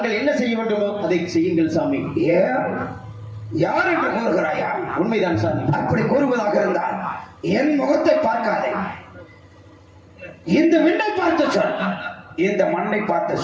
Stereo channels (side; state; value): both; identical; correlation 1.00